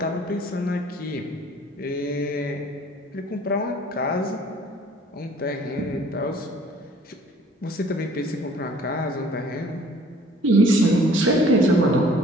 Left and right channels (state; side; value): normal; both; correlation 0.53